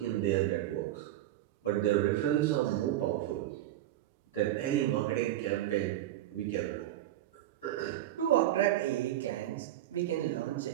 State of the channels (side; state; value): left; quieter; 13.7 dB